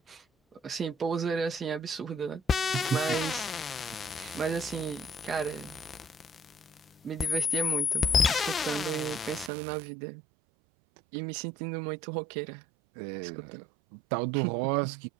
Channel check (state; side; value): drops out; left; at 9.5 s